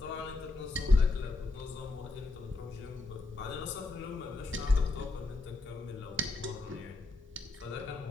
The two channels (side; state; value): right; quieter; 3.1 dB